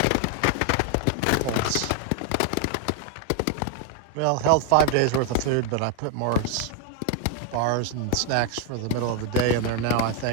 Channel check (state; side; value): different; both; correlation 0.01